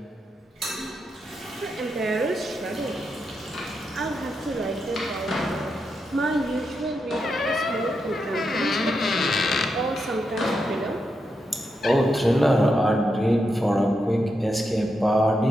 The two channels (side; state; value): both; normal; correlation 0.84